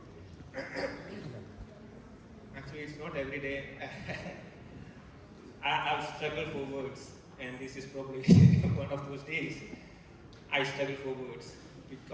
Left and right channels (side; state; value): both; identical; correlation 1.00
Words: Actually, it's not every day. I've struggled for words, and this is probably one of those days. I struggle for words